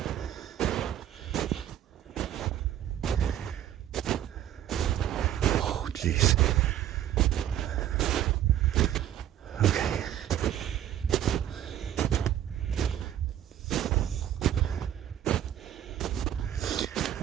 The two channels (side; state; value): left; quieter; 11.4 dB